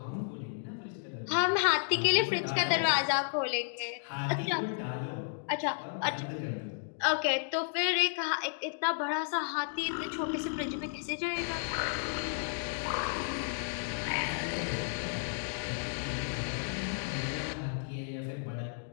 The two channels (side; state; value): right; silent; digital silence